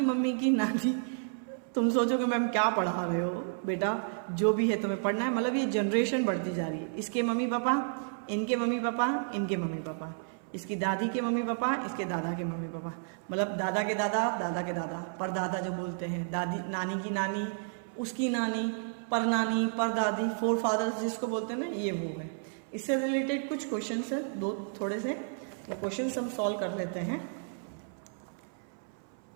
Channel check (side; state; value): left; silent; 57 dB below the other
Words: मम्मी की नानी. तुम सोचोगे मैम क्या पढ़ा रहे हो बेटा, जो भी है तुम्हें पढ़ना है. मतलब ये जनरेशन बढ़ती जा रही है. इसके मम्मी पापा, इनके मम्मी पापा, इनके मम्मी पापा, इसकी दादी के मम्मी पापा, इसके दादा के मम्मी पापा, मतलब दादा के दादा, दादा के दादा, परदादा जो बोलते हैं, दादी नानी की नानी, उसकी नानी, परनानी, परदादी, फोर फादर्स जिसको बोलते हैं ना, ये वो है. इससे रिलेटेड कुछ क्वेश्चन है, दो थोड़े से, वो क्वेश्चन हम सॉल्व कर लेते हैं.